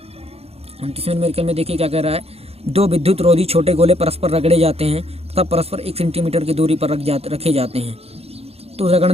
29वें न्यूमेरिकल में देखिए क्या कह रहा है। 2 विद्युत रोधी छोटे गोले परस्पर रगड़े जाते हैं तथा परस्पर 1 सेंटीमीटर की दूरी पर रखे जाते हैं। तो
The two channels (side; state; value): left; late; 0.29 ms